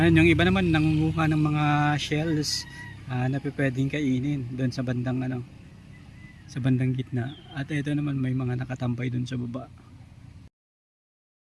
Yung iba naman nangunguha ng mga shells na pwedeng kainin doon sa bandang sa bandang gitna. At ito naman may mga nakatambay doon sa baba.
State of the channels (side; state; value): both; identical; correlation 1.00